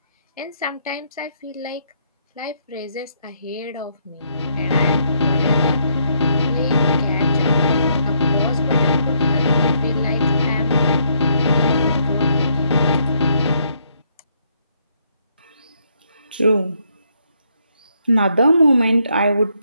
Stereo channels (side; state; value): both; inverted; correlation -0.72